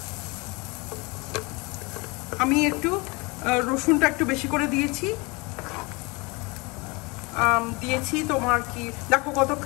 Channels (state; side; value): quieter; right; 26.8 dB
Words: আমি একটু রসুনটা একটু বেশি করে দিয়েছি, তোমার কি দেখো কত